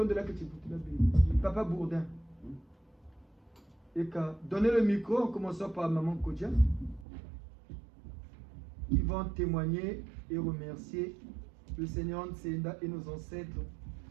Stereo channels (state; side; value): drops out; left; at 7.1 s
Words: de la Papa Bourdin. Et qu'à donner le micro en commençant par Maman Kodja, qui vont témoigner et remercier le Seigneur Nsenda et nos ancêtres.